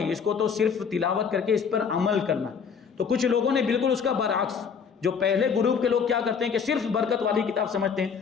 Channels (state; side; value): quieter; right; 6.4 dB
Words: اس کو تو صرف تلاوت کر کے اس پر عمل کرنا. تو کچھ لوگوں نے بالکل اس کا برعکس، جو پہلے گروپ کے لوگ کیا کرتے ہیں کہ صرف برکت والی کتاب سمجھتے ہیں،